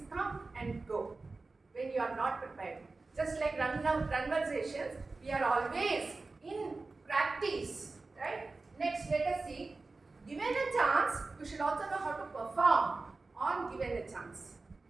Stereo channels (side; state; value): left; quieter; 3.6 dB